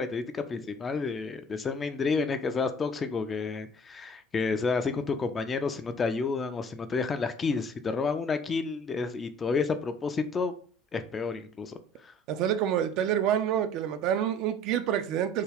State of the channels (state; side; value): normal; both; correlation 0.51